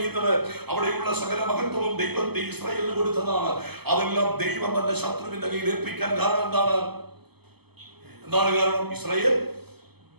അവിടെയുള്ള സകല മഹത്വവും ദൈവത്തെ ഇസ്രായേലിന് കൊടുത്തതാണ്. അതെല്ലാം ദൈവം തന്നെ ശത്രുവിന്റെ കയ്യിൽ ഏൽപ്പിക്കാൻ കാരണം എന്താണ് കാരണം? ഇസ്രായേൽ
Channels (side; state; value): left; late; 0.97 ms